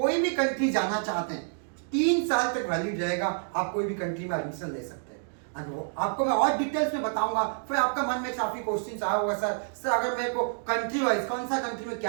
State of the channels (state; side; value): silent; left; digital silence